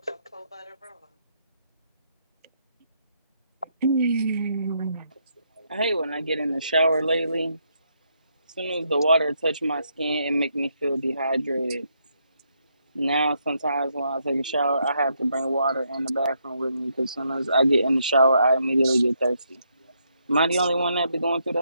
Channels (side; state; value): both; inverted; correlation -0.77